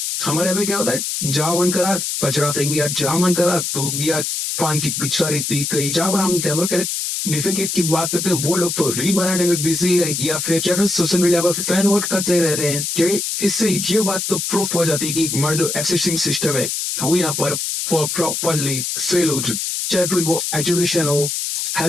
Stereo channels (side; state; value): left; noise; hiss, 2 dB below the sound